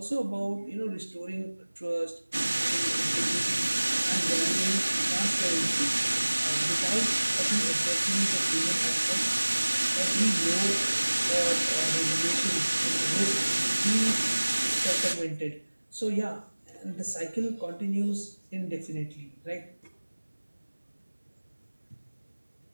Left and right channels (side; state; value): both; inverted; correlation -1.00